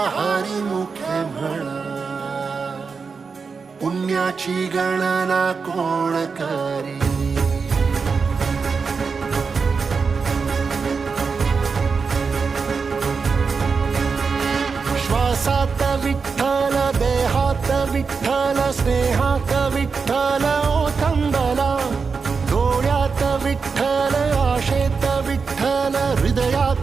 हरिमुखे म्हणा, पुण्याची गणना कोण करी. श्वासात विठ्ठल, देहात विठ्ठल, स्नेहात विठ्ठल ओथंबला. डोळ्यात विठ्ठल, आशेत विठ्ठल,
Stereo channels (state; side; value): quieter; left; 5.1 dB